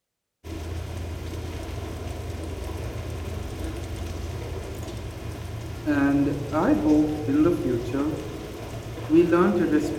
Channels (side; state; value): both; identical; correlation 1.00